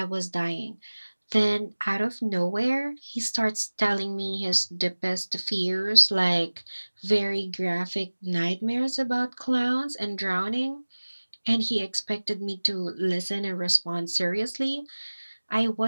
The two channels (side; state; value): both; inverted; correlation -1.00